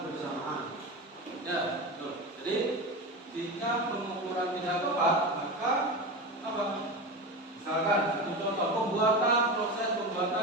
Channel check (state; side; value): normal; both; correlation 0.23